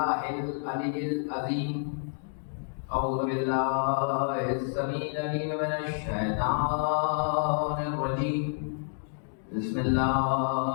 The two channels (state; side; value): silent; right; digital silence